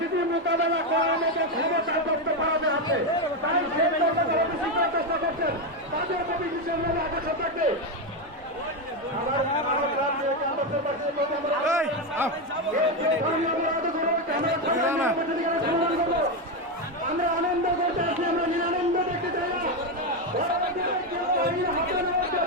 মোকাবেলা করার মতো ক্ষমতা দপ্তর ভারতে আছে, তাই সেই চেষ্টা করছেন তাদের প্রতি বিশেষ আকর্ষণ থাকবে। আমরা আনন্দ করতে আছি, আমরা নিরানন্দ দেখতে চাই না।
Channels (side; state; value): both; normal; correlation 0.09